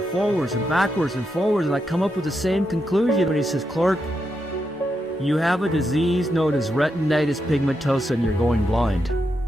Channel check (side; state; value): both; normal; correlation 0.84